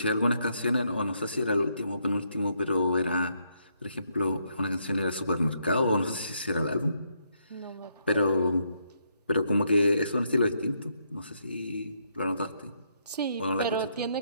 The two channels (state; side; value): inverted; both; correlation -0.75